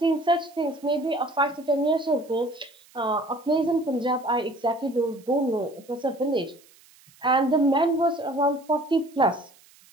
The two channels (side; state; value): right; noise; hiss, 28 dB below the sound